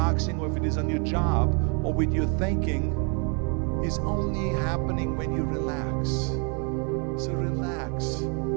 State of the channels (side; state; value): left; quieter; 37.5 dB